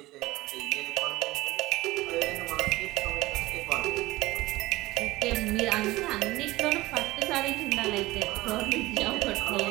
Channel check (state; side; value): quieter; left; 18.8 dB